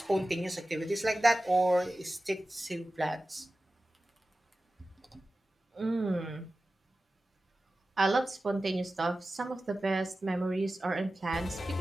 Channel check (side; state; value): both; normal; correlation 0.95